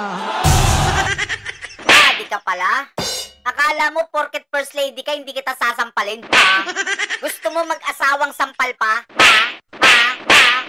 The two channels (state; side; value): identical; both; correlation 1.00